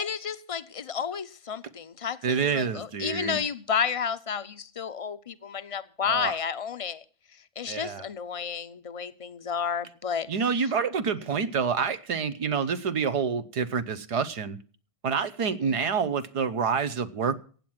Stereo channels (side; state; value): left; late; 1.5 ms